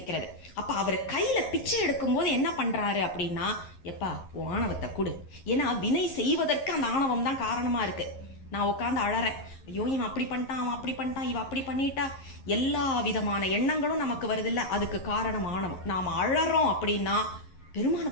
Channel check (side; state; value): right; late; 11 ms